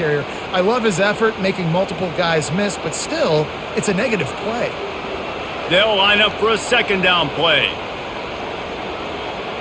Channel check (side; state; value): both; identical; correlation 1.00